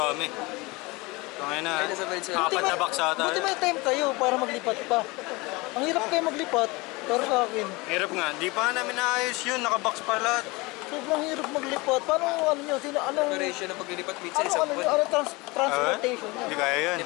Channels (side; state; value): right; quieter; 24.2 dB